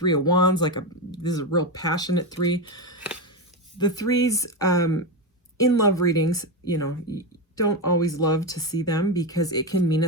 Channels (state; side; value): normal; both; correlation 0.12